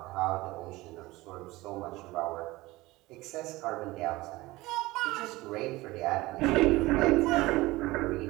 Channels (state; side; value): quieter; left; 19.9 dB